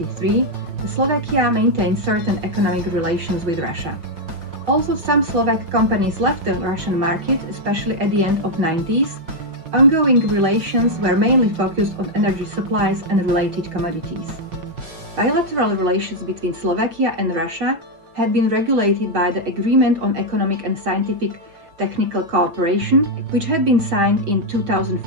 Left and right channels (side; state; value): left; late; 5.6 ms